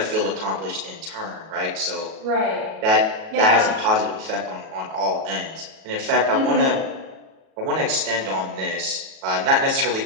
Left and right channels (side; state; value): left; late; 37 ms